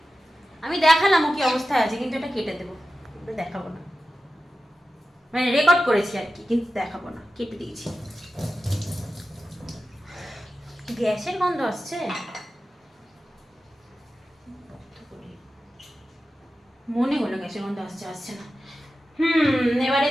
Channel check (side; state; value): both; normal; correlation 0.93